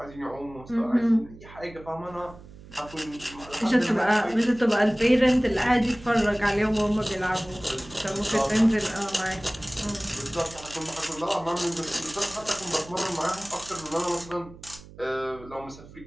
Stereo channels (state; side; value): noise; right; hum, 19 dB below the sound